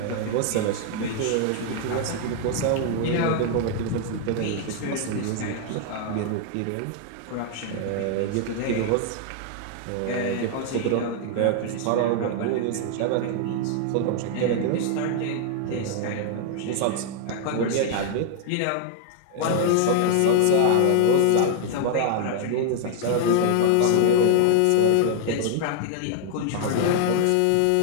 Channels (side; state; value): both; different; correlation 0.00